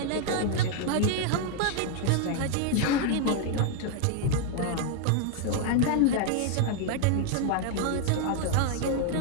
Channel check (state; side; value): different; both; correlation 0.00